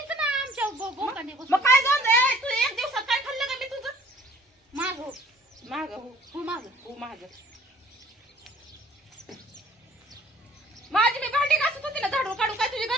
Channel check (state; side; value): normal; both; correlation 0.55